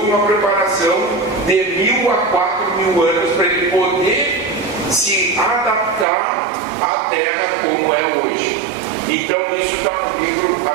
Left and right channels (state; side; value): drops out; left; at 6.1 s